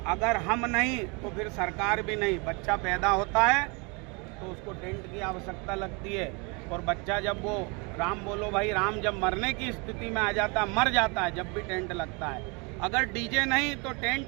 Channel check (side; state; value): left; quieter; 30.5 dB